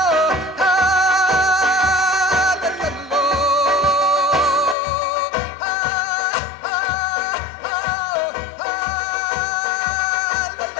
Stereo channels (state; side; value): drops out; right; at 4.8 s